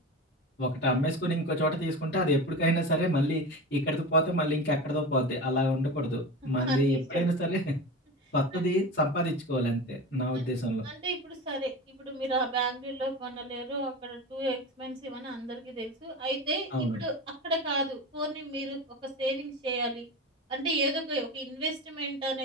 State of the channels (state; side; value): normal; both; correlation 0.28